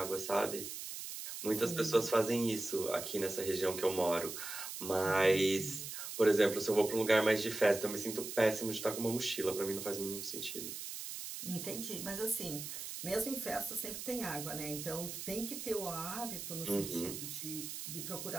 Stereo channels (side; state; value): right; noise; hiss, 7 dB below the sound